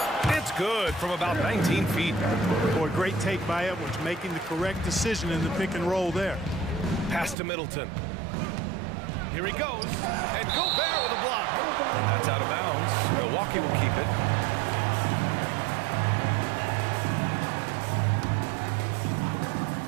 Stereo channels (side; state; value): left; drops out; at 7.4 s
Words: It's good from about 19 feet. Boy, great take by Edwards, making the correct decision in the pick and roll there. Pass to Middleton. Here he goes. And Gobert with a block. And that's out of bounds. Milwaukee will keep it.